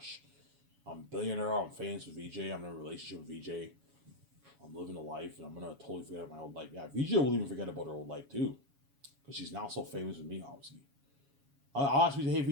I'm a billionaire. I'm famous with VJ. I'm in a relationship with VJ. I'm living a life, and I'm gonna totally forget about my old life. Yeah, VJ will even forget about her old life too, because she's now so famous with me, obviously. I'll ask you, hey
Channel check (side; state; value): left; late; 7.2 ms